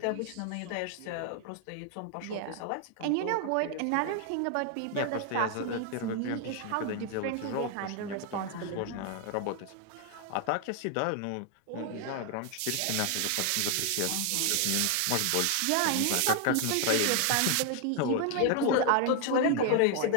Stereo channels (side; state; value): both; different; correlation 0.00